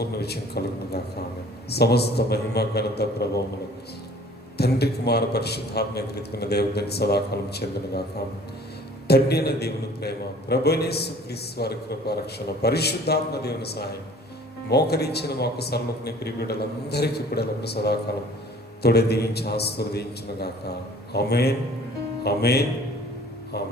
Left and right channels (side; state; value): both; normal; correlation 0.51